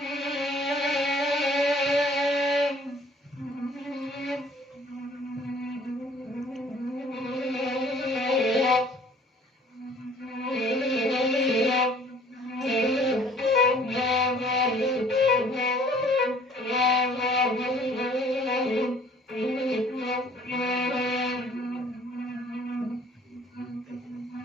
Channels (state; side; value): normal; both; correlation 0.55